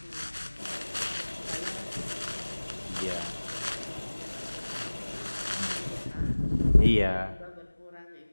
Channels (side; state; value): both; inverted; correlation -1.00